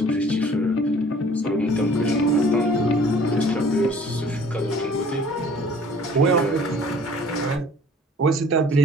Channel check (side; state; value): both; normal; correlation 0.52